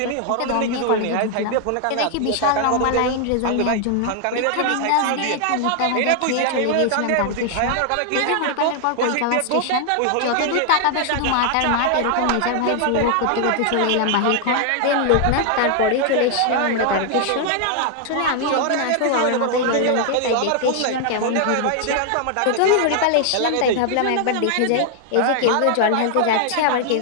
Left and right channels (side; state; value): both; different; correlation 0.00